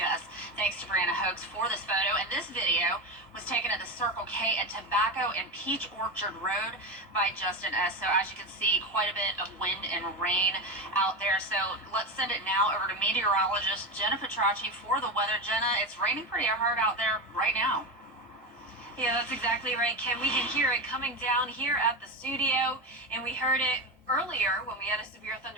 Thanks to Brianna Hoax for this photo. And this video was taken at the Circle K at Tobacco and Peach Orchard Road by Justin S. So as you can see, quite a bit of wind and rain out there. So let's send it now over to meteorologist Jenna Petracci for the weather. Jenna, it's raining pretty hard out there right now. Yeah, that's exactly right, Kim. We can hear it coming down here at the studio, and we heard it earlier when we had a severe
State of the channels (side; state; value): both; normal; correlation 0.18